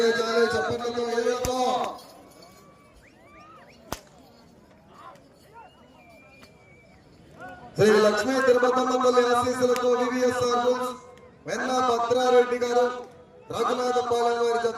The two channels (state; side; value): identical; both; correlation 1.00